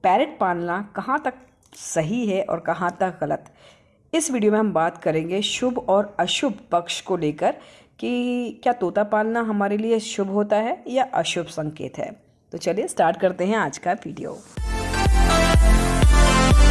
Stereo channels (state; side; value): identical; both; correlation 1.00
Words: पैरट पालना कहाँ तक सही है और कहाँ तक गलत। इस वीडियो में हम बात करेंगे शुभ और अशुभ पक्ष को लेकर कि क्या तोता पालना हमारे लिए शुभ होता है या अशुभ संकेत है। तो चलिए स्टार्ट करते हैं आज का वीडियो।